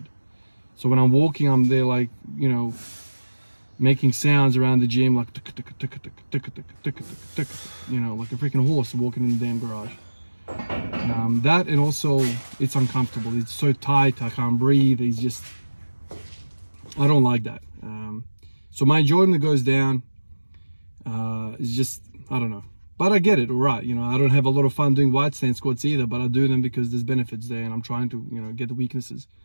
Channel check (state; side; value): inverted; both; correlation -1.00